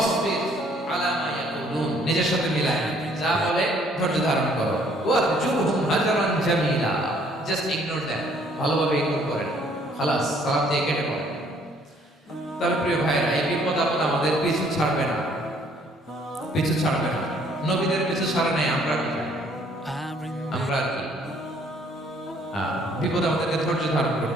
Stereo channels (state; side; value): normal; both; correlation 0.62